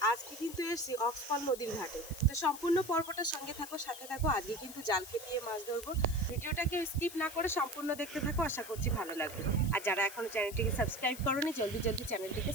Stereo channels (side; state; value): left; noise; hiss, 13 dB below the sound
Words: আজকে কিন্তু এসেছি অক্সফল নদীর ঘাটে। তো সম্পূর্ণ পর্বটার সঙ্গে থাকো, সাথে থাকো। আজকে কিন্তু জাল খেপিয়ে মাছ ধরবো। ভিডিওটাকে স্কিপ না করে সম্পূর্ণ দেখতে থাকো, আশা করছি ভালো লাগবে। আর যারা এখনো চ্যানেলটিকে সাবস্ক্রাইব করোনি, জলদি জলদি চ্যানেলটিকে